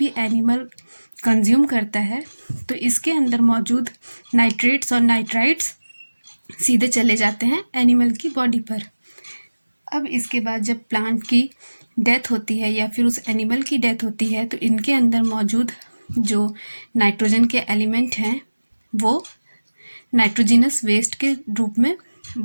एनिमल कंज्यूम करता है तो इसके अंदर मौजूद नाइट्रेट्स और नाइट्राइट्स सीधे चले जाते हैं एनिमल की बॉडी पर। अब इसके बाद जब प्लांट की डेथ होती है या फिर उस एनिमल की डेथ होती है तो इनके अंदर मौजूद जो नाइट्रोजन के एलिमेंट हैं वो नाइट्रोजिनस वेस्ट के रूप में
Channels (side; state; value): both; inverted; correlation -1.00